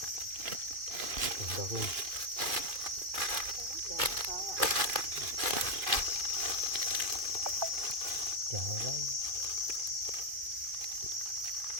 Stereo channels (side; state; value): left; late; 2.5 ms